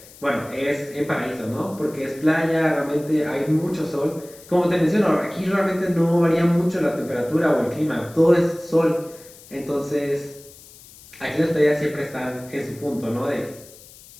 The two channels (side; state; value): left; noise; hiss, 21 dB below the sound